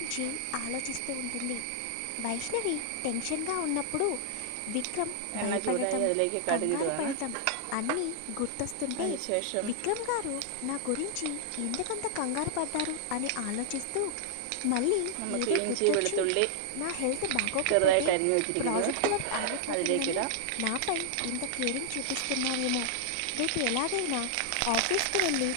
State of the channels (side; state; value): both; different; correlation -0.01